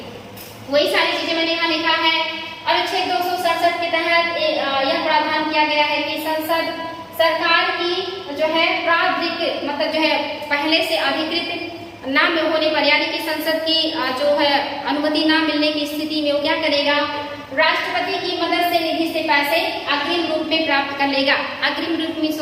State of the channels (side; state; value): both; identical; correlation 1.00